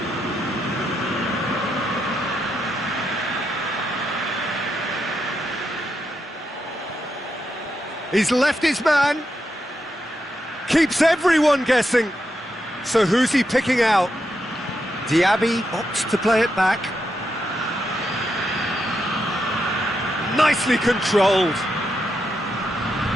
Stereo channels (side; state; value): both; normal; correlation 0.83